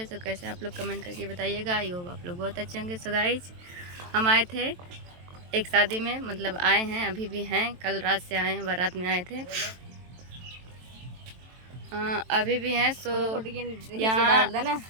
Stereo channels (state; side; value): late; left; 23 ms